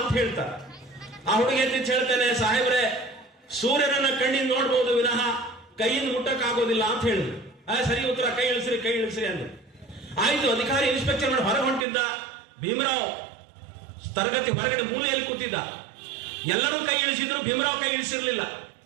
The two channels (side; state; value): left; drops out; at 11.9 s